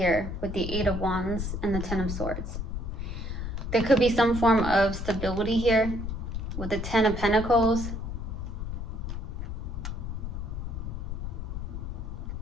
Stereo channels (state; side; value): noise; left; rumble, 4 dB below the sound